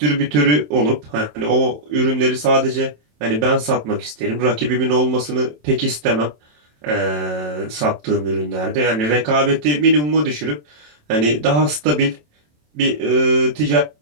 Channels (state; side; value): late; left; 27 ms